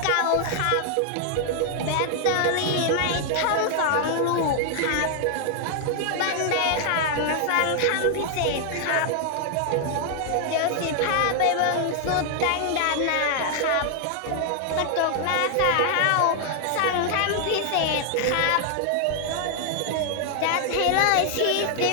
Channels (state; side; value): different; both; correlation 0.00